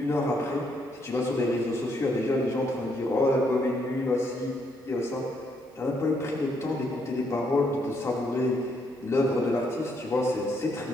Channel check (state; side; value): normal; both; correlation 0.74